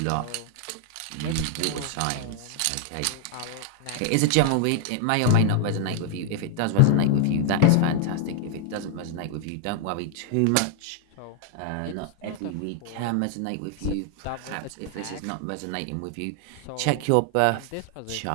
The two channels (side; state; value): both; different; correlation 0.00